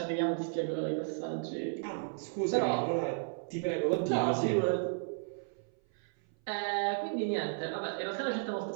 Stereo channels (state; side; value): silent; left; 55 dB below the other